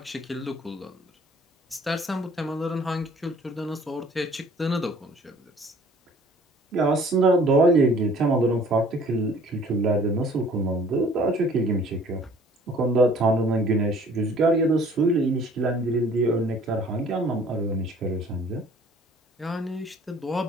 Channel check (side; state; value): both; normal; correlation 0.54